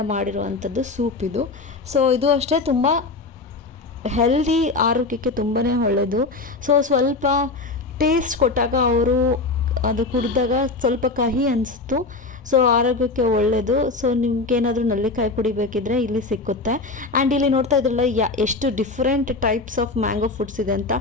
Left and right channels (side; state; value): right; quieter; 3.6 dB